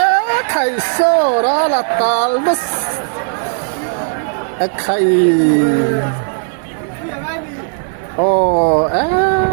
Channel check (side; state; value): left; silent; digital silence